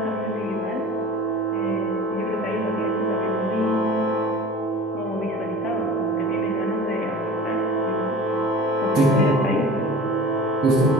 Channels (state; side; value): normal; both; correlation 0.41